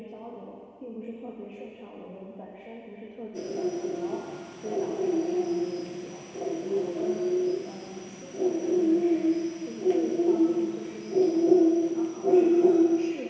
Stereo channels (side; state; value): both; identical; correlation 1.00